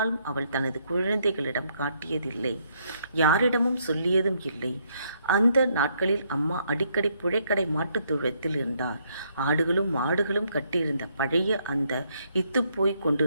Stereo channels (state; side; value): inverted; both; correlation -0.72